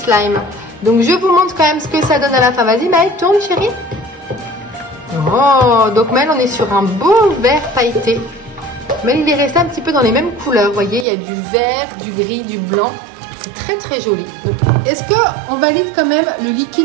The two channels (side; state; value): left; drops out; at 11.1 s